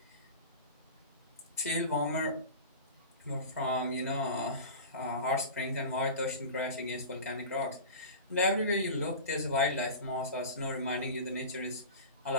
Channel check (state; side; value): inverted; both; correlation -0.33